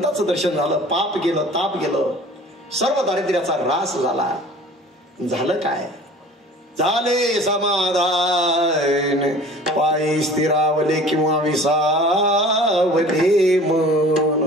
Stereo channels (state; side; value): normal; both; correlation 0.45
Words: दर्शन झालं, पाप गेलं, ताप गेलं, सर्व दारिद्र्याचा ऱ्हास झाला. झालं काय? झाले समाधान, पायी स्थिरावले किंवा विसावले मन.